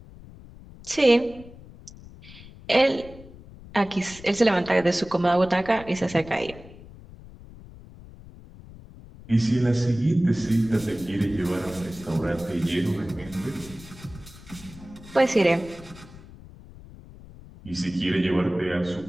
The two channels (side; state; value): left; noise; rumble, 19 dB below the sound